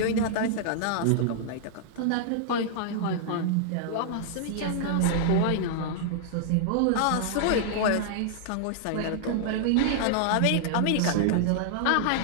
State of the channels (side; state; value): both; different; correlation -0.01